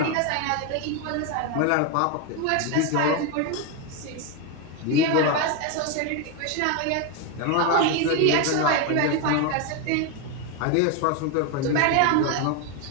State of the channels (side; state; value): both; different; correlation 0.02